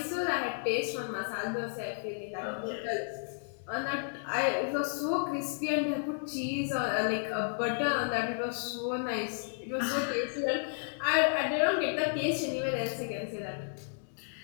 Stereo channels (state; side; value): silent; right; 56 dB below the other